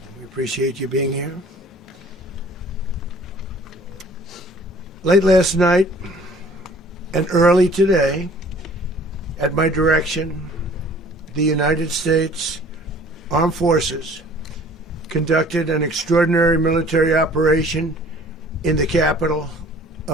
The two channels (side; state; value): both; normal; correlation 0.52